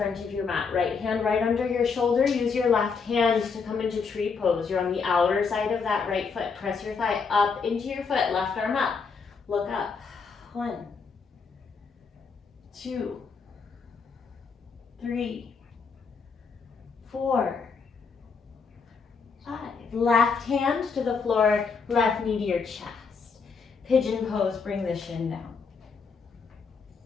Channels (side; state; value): right; quieter; 5.2 dB